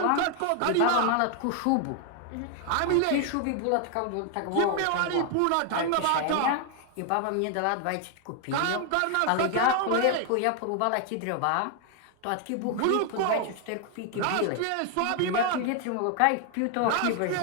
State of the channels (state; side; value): different; both; correlation 0.00